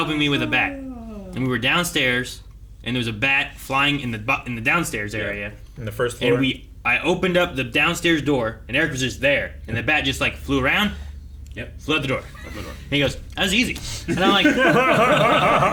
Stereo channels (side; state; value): both; identical; correlation 1.00